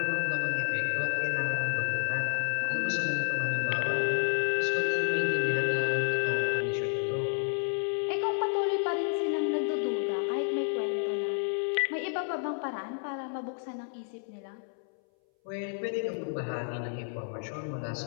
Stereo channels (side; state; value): right; silent; 57 dB below the other